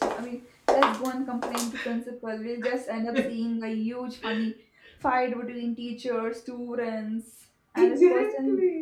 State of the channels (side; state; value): both; identical; correlation 1.00